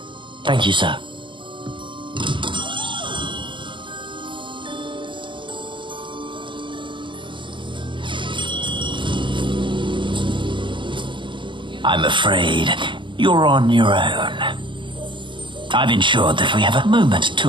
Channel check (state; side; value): late; left; 0.24 ms